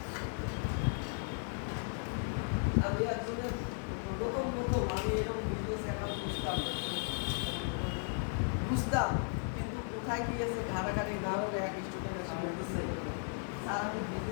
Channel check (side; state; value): right; silent; 54 dB below the other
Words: আমি একজনের প্রথম আমি এরকম বিজনেস অ্যাকাউন্ট বুঝতাম কিন্তু কোথায় গিয়েছে ঘাটাঘাটি না হলে এক স্টুডেন্ট স্যার আমি